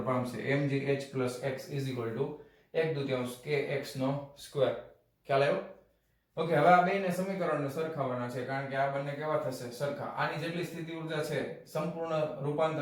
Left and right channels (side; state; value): both; identical; correlation 1.00